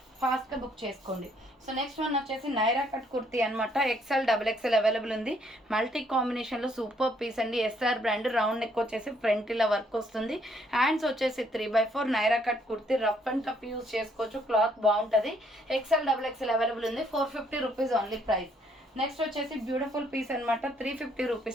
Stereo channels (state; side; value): normal; both; correlation 0.68